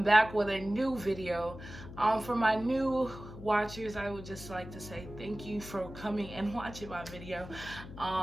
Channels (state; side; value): noise; left; hum, 13 dB below the sound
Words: back with a new video. For my new watchers, I would just like to say thank you for coming and watching my video.